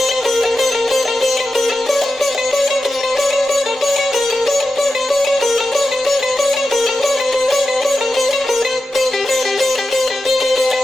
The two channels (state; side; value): normal; both; correlation 0.91